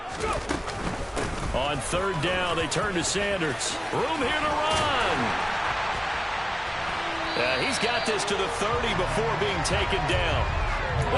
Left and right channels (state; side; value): identical; both; correlation 1.00